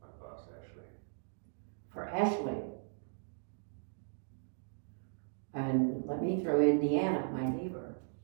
My boss Ashley. For Ashley. And let me throw in Deanna, my neighbor,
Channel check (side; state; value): left; silent; digital silence